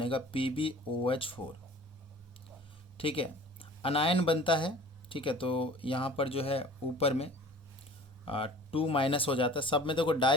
PbOH4, ठीक है। अनायन बनता है, ठीक है, तो यहाँ पर जो है ऊपर में 2 माइनस हो जाता है। सब में देखो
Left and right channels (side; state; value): both; normal; correlation 0.45